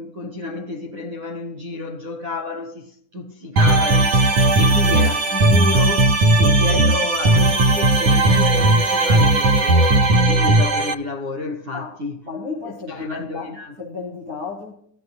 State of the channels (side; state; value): left; late; 9.8 ms